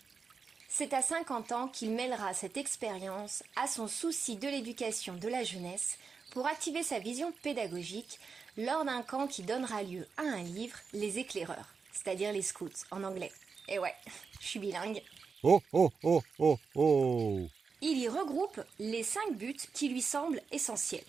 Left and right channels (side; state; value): left; quieter; 5.2 dB